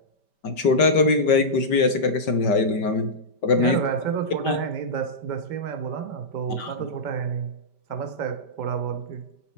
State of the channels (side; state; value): right; late; 5.1 ms